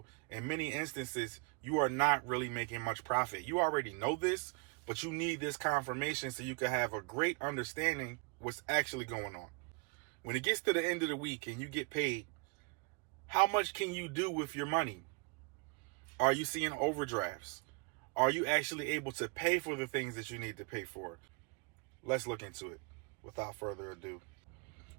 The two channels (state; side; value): quieter; left; 32.4 dB